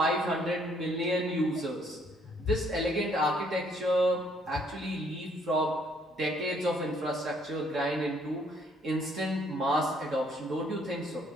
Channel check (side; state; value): both; normal; correlation 0.65